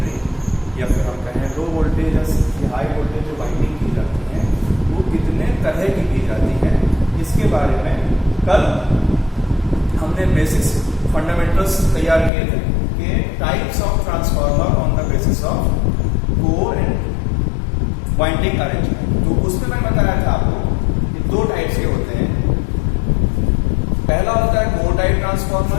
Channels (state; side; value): drops out; right; at 12.3 s